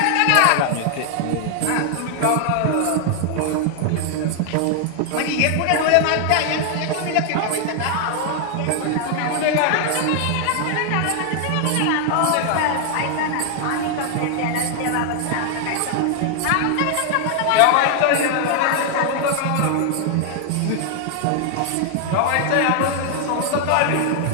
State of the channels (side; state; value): both; different; correlation 0.00